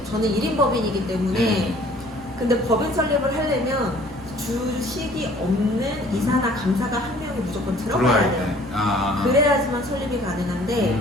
저는 1인 법인이기 때문에 근데 법인 설립을 하려면 주식이 없는 이사나 감사가 한 명이 무조건 들어가야 돼요. 그래야지만 설립이 가능한데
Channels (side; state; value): both; normal; correlation 0.54